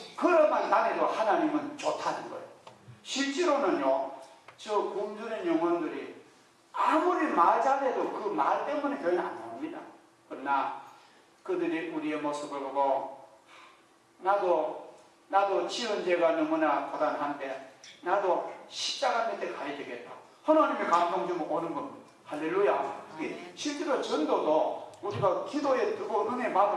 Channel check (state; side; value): identical; both; correlation 1.00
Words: 걸어만 다녀도 하나님은 좋다는 거예요. 실제로는요, 저 굶주린 영혼들이 아무리 말 잘해도 그 말 때문에 교회는 안 나옵니다. 그러나 그들이 우리의 모습을 보고 나도 지은 죄가 너무나 고단한데 나도 십자가 밑에 가야 되겠다, 하나님의 감동 주면 오는 겁니다. 할렐루야. 실제로 전도도 우리가 기도에 뜨거운 은혜